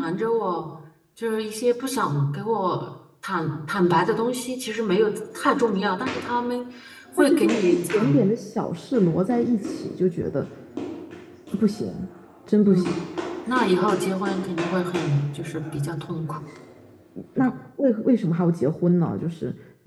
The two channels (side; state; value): both; identical; correlation 1.00